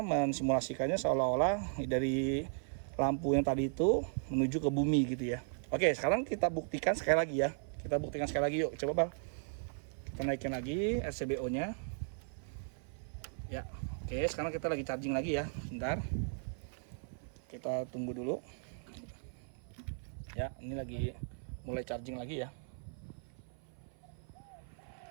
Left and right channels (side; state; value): left; silent; 53 dB below the other